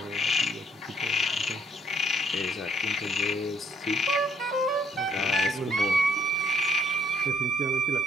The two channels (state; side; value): normal; both; correlation 0.67